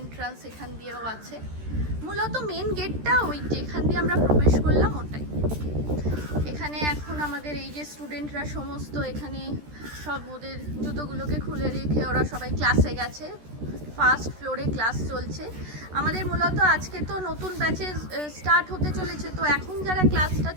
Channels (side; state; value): left; late; 13 ms